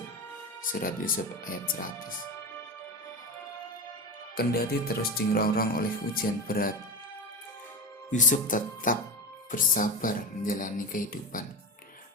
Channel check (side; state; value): both; normal; correlation 0.23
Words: surat Yusuf ayat 100. Kendati terus dirongrong oleh ujian berat, Yusuf tetap bersabar menjalani kehidupan.